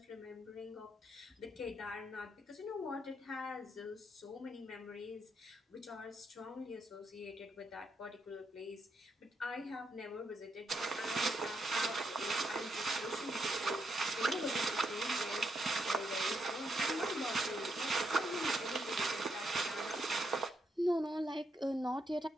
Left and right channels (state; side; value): normal; both; correlation 0.79